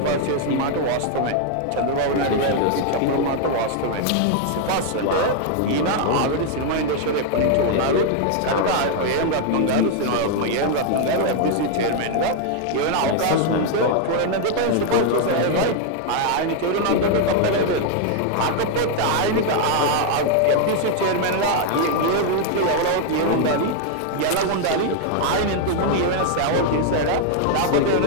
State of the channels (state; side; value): different; both; correlation 0.00